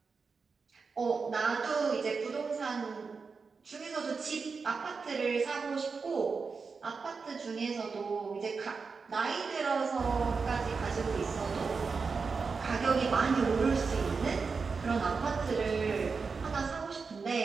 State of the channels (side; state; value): left; quieter; 4.9 dB